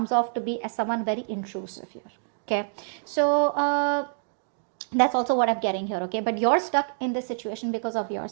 off to be as someone very intrusive here, okay? So that's also what I'm getting here, okay? But you're stuck in this situation because of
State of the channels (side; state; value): left; silent; digital silence